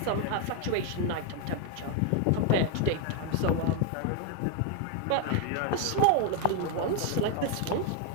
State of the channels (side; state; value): both; different; correlation 0.01